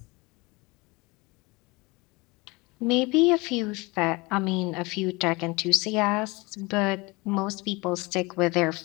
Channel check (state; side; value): quieter; right; 24.9 dB